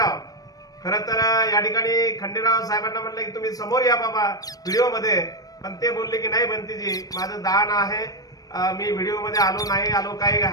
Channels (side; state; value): right; late; 0.18 ms